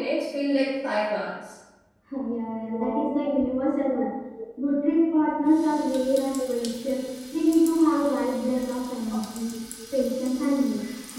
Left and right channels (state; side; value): identical; both; correlation 1.00